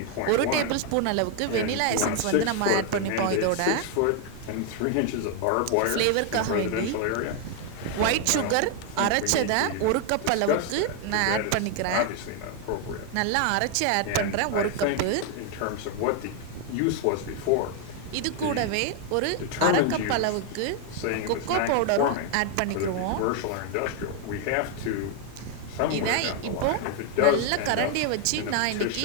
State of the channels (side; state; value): both; different; correlation 0.00